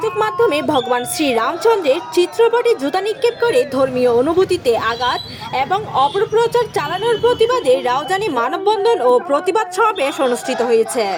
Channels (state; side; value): identical; both; correlation 1.00